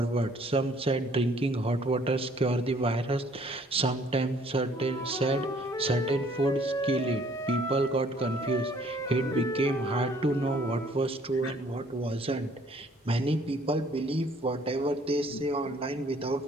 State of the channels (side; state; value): both; normal; correlation 0.60